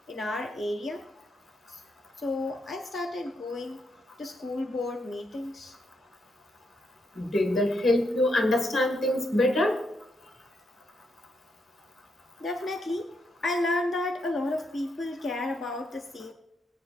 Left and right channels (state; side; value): normal; both; correlation 0.80